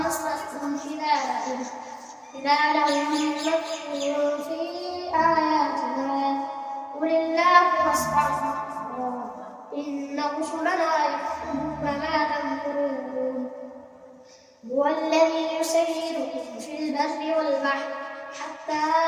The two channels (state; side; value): identical; both; correlation 1.00